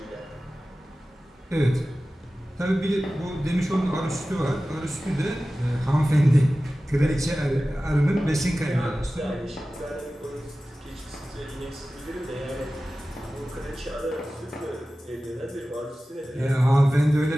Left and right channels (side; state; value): both; normal; correlation 0.96